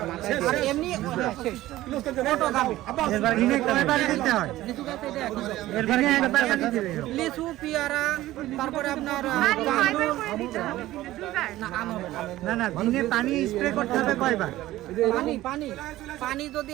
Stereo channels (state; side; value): quieter; left; 15.8 dB